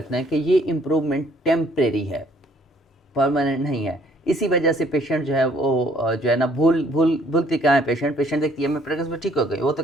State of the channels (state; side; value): normal; both; correlation 0.62